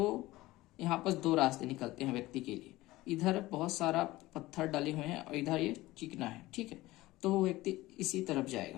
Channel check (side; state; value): right; quieter; 18.3 dB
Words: यहाँ पर 2 रास्ते निकलते हैं व्यक्ति के लिए, इधर बहुत सारा पत्थर डले हुए हैं और इधर ये चिकना है, ठीक है। तो वो व्यक्ति इसी तरफ